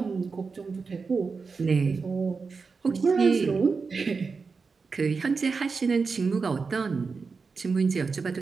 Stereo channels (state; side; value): quieter; left; 4.8 dB